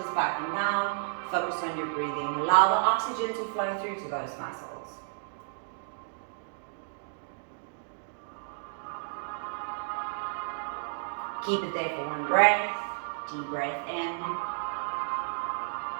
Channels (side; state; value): left; silent; digital silence